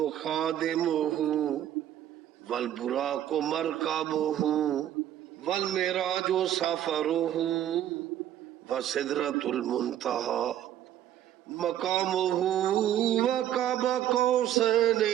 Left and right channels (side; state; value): left; quieter; 11.5 dB